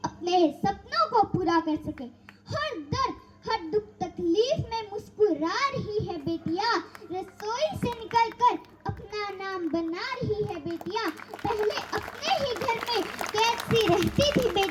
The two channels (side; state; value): both; identical; correlation 1.00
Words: सके। हर दर्द हर दुख तकलीफ में मुस्कुरा रही है बेटियां, रसोई से निकलकर अपना नाम बना रही है बेटियां। पहले अपने ही घर में कैसी रहती थी